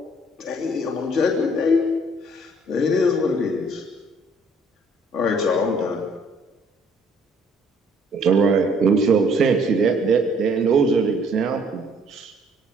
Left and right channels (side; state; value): both; normal; correlation 0.61